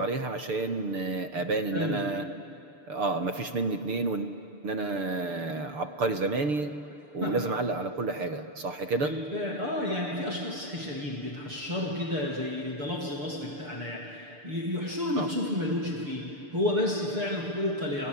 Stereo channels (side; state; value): left; late; 6.8 ms